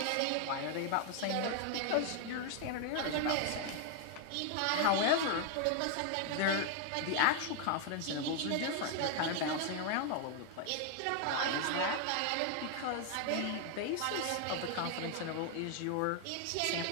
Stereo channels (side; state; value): both; different; correlation 0.00